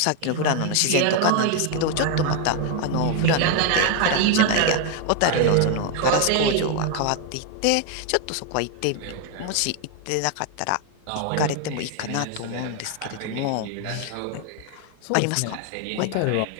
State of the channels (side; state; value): both; different; correlation 0.00